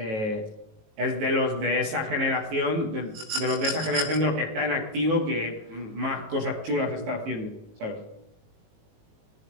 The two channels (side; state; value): left; late; 19 ms